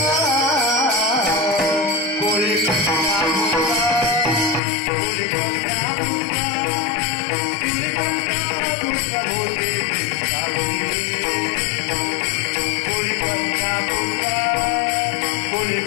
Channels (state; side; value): drops out; right; at 4.6 s